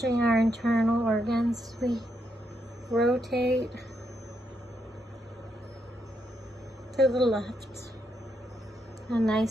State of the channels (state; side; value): normal; both; correlation 0.80